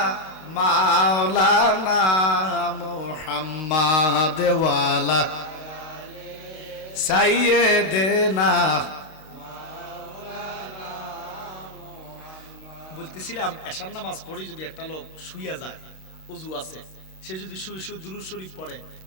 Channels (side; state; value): right; late; 32 ms